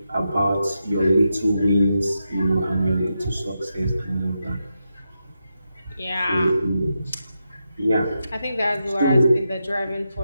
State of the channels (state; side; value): inverted; both; correlation -0.87